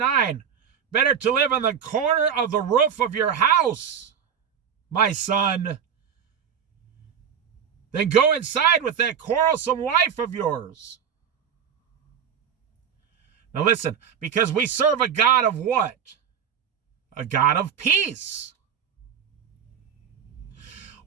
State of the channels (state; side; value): quieter; left; 7.8 dB